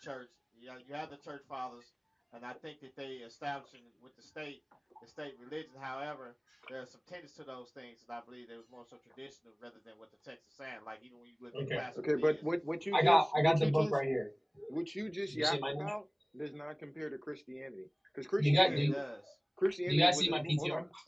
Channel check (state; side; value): identical; both; correlation 1.00